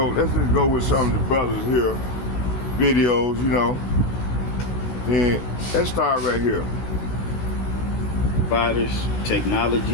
with some of the brothers here videos, you know. And let's start right here. Providers,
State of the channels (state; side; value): late; right; 16 ms